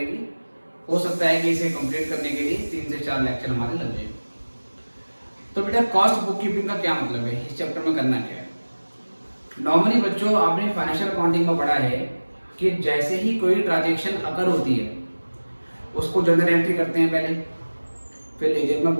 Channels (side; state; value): both; inverted; correlation -1.00